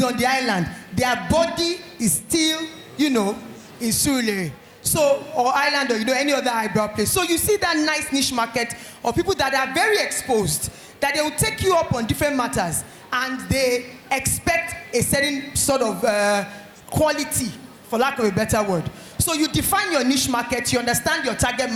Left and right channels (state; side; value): identical; both; correlation 1.00